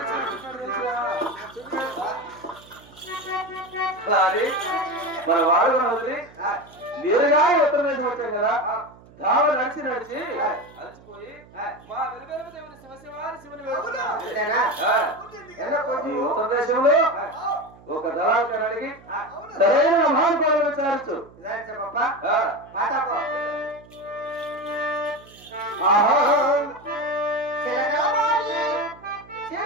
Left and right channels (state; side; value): noise; right; hum, 24 dB below the sound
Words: మన వాడు వదిలి నేరుగా ఉత్తర దేశం వచ్చాం కదా దావ నడిచి నడిచి అలసిపోయి మా వెలువెలుపు దేవుని శివశివారి శివుని ఉత్తర దేశంలో ఒక దళాలను అడిగి సరైన మహానుభావులు విచారించు